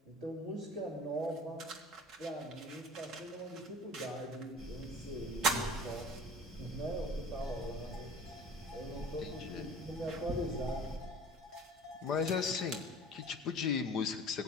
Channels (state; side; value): normal; both; correlation 0.42